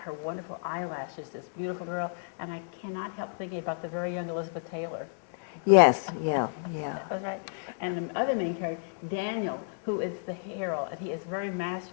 her wonderful eyelashes, this beautiful girl, and I cannot help thinking about the very young Elizabeth Taylor. Yes, yeah. That was right. And the other main character, Daniel, who is the hero, and he is very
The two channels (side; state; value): right; silent; 57 dB below the other